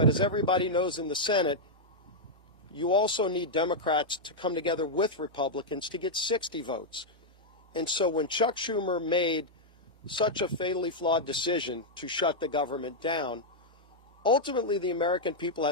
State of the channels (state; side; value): normal; both; correlation -0.04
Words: as everybody knows in the Senate, you also need Democrats to come together with Republicans to get 60 votes. And so when Chuck Schumer made such a fatally flawed decision to shut the government down, ultimately the American people,